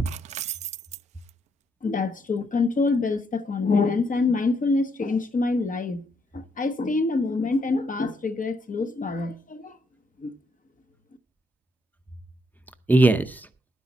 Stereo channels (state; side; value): normal; both; correlation 0.75